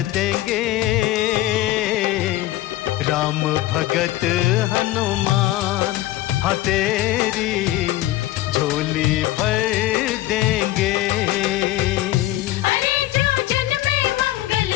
देंगे। राम भगत हनुमान हाँ तेरी झोली भर देंगे। अरे जो जन्मे मंगल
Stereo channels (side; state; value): right; quieter; 15.9 dB